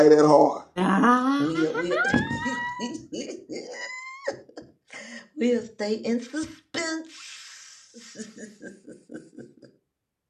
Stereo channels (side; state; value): both; identical; correlation 1.00